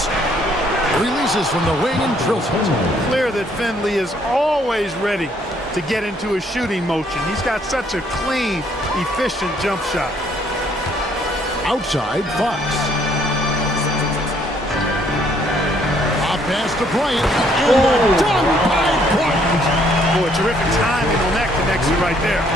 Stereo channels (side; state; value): both; normal; correlation 0.66